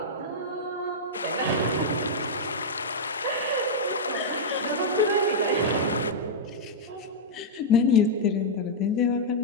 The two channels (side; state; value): both; normal; correlation -0.06